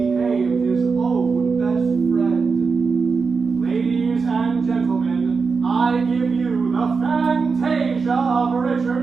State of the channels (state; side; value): quieter; left; 4.9 dB